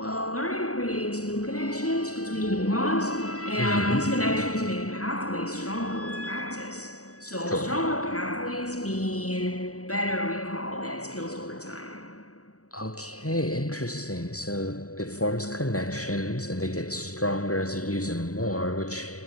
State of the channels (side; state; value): right; late; 0.66 ms